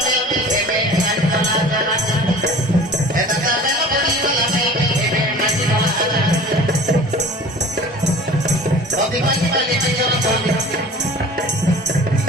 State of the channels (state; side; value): normal; both; correlation 0.42